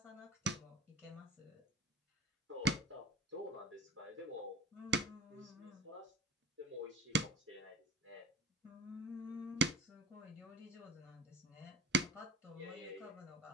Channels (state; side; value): normal; both; correlation 0.41